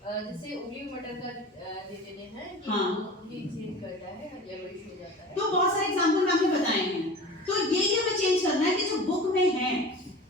जैसे उबली मटर का दे देते हैं कि हाँ। ये चेंज करता है, येलोइश हो जाता है। तो बहुत सारे एग्जांपल मैंने बताए हैं। तो यही हमें चेंज करना है कि जो बुक में है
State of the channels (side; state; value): both; normal; correlation 0.37